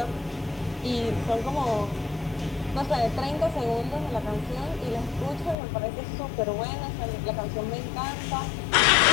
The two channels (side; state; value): right; drops out; at 5.6 s